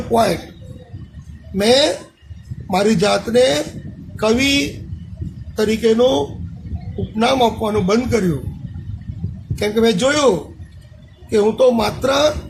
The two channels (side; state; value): both; identical; correlation 1.00